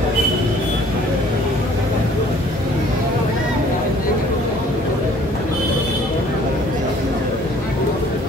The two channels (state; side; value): normal; both; correlation 0.56